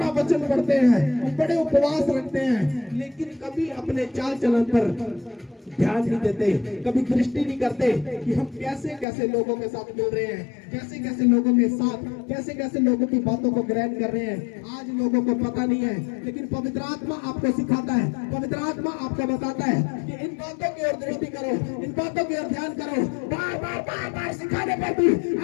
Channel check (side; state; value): right; drops out; at 9.1 s